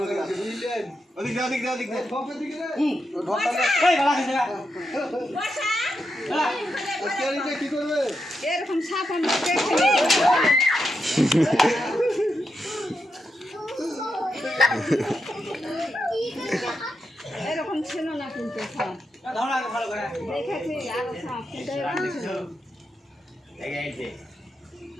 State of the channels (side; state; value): both; normal; correlation 0.85